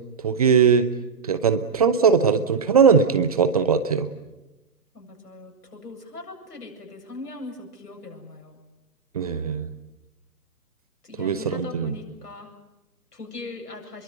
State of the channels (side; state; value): left; quieter; 5.6 dB